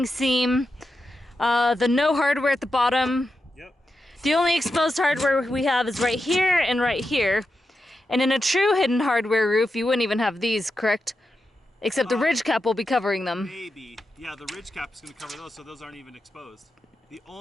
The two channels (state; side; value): normal; both; correlation 0.89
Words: seam, the no hardware at the bottom. Yep. The only exposed hardware we have is right here and right here. And in a true hidden hardware roof, you wouldn't even have these, correct? Except the ridge cap will be covering them. Maybe. Yeah, the ridge cap is going to cover those, so those aren't even exposed. The